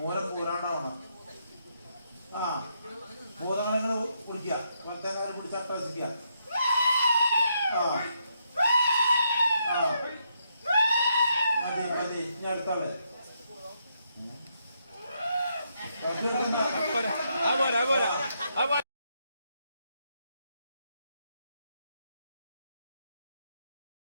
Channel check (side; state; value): both; inverted; correlation -0.78